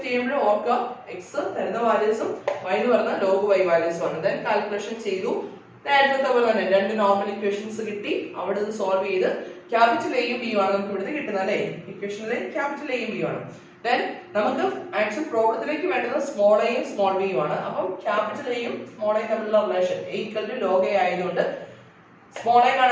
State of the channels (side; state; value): both; identical; correlation 1.00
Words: ചെയ്യുമ്പോൾ ഓർക്കുക എക്സ് തരുന്ന വാല്യൂസും വൈ എന്ന് പറഞ്ഞ ലോഗ് വൈ വാല്യൂസും ആണ്. ദെൻ കാൽക്കുലേഷൻ ചെയ്തു. നേരത്തെ പോലെ തന്നെ രണ്ട് നോർമൽ ഇക്വേഷൻസ് കിട്ടി. അവിടെ ഇത് സോൾവ് ചെയ്ത് ക്യാപിറ്റൽ എയും ബിയും ആണ് നമുക്ക് ഇവിടുന്ന് കിട്ടുന്നത് അല്ലേ. ഇക്വേഷനിലെ ക്യാപിറ്റൽ എയും ബിയും ആണ്. ദെൻ നമുക്ക് ആക്ച്വൽ പ്രോബ്ലത്തിലേക്ക് വേണ്ടത് സ്മോൾ എയും സ്മോൾ ബിയും ആണ്. അപ്പം ക്യാപിറ്റൽ എയും സ്മോൾ എയും തമ്മിലുള്ള relation A equal to log A ആയതുകൊണ്ട് സ്മോൾ എ